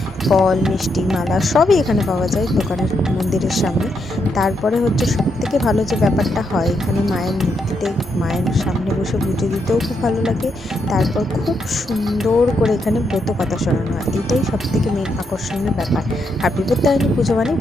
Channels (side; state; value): both; normal; correlation 0.80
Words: ফল, মিষ্টি, মালা সবই এখানে পাওয়া যায় দোকানের মন্দিরের সামনে। তারপরে হচ্ছে সবথেকে ভালো যে ব্যাপারটা হয়, এখানে মায়ের মূর্তিতে মায়ের সামনে বসে পুজো দিতেও খুব ভালো লাগে। তারপর খুব সুন্দর করে এখানে ব্রত কথা শোনানো হয়, এটাই সব থেকে মেন আকর্ষণীয় ব্যাপার। আর বিপত্তারিণী পুজো মানে